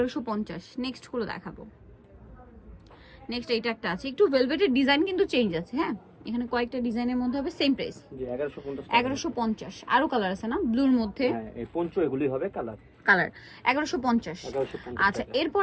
নেক্সট গুলো দেখাবো। নেক্সট এইটা একটা আছে, একটু ভেলভেটের ডিজাইন কিন্তু চেঞ্জ আছে, হ্যাঁ, এখানে কয়েকটা ডিজাইনের মধ্যে হবে, সেম প্রাইস জি 1150 টাকা। 1150। আরো কালার আছে না ব্লুর মধ্যে, হ্যাঁ, এই পঞ্চ এগুলি হবে কালার। 1150। 1150 আচ্ছা, টাকা।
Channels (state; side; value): identical; both; correlation 1.00